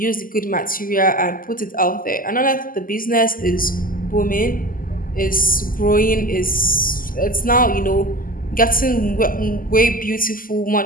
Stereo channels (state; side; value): late; right; 0.41 ms